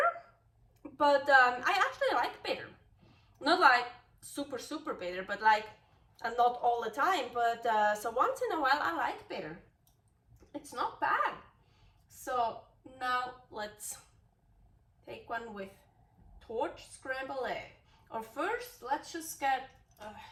but I actually like bitter. Not like super, super bitter, but like, and not all the time, but so once in a while I like bitter. It's not bad. So now let's take one with torch scrambled egg. Or first, let's just get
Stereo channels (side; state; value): both; identical; correlation 1.00